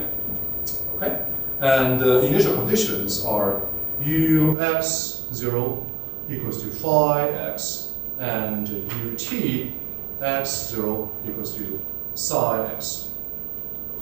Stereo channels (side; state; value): left; drops out; at 4.5 s